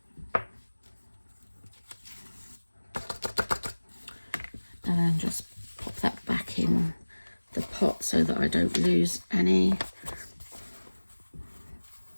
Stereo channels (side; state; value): both; inverted; correlation -1.00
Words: And then just pop that back in the pot so that I don't lose any.